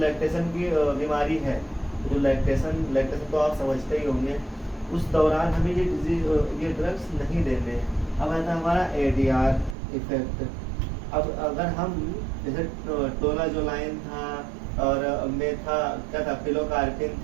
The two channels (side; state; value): left; drops out; at 9.8 s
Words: की बीमारी है, जो लैक्टेशन तो आप समझते ही होंगे, उस दौरान हमें ये ड्रग्स नहीं देने। अब आता है हमारा ADR इफेक्ट। अब अगर हम जैसे टोलाजोलाइन था, और क्या था, पिलोकार्पिन